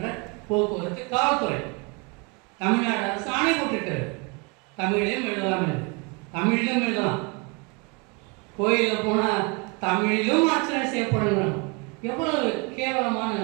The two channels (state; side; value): quieter; left; 30.2 dB